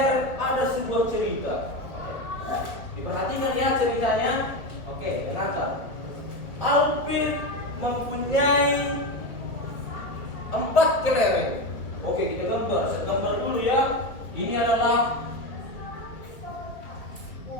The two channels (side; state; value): right; late; 1.6 ms